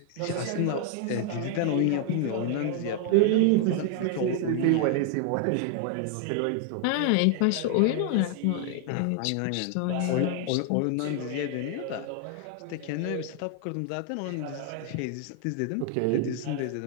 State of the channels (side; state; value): both; different; correlation 0.00